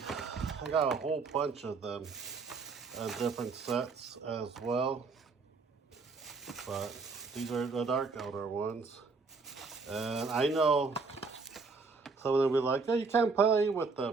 I got a whole bunch of them and different sets as well, but these are the Dark Eldar ones. And I know some of them will be like, oh, you can't play with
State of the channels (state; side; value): quieter; left; 4.3 dB